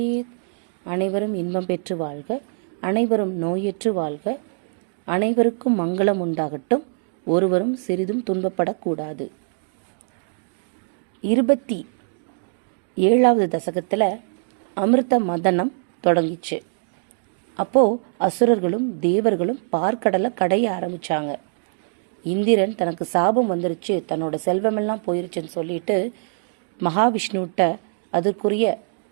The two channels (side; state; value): left; silent; digital silence